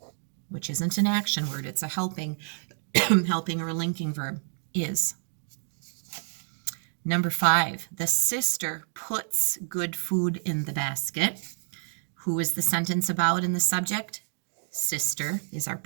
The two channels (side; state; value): left; silent; digital silence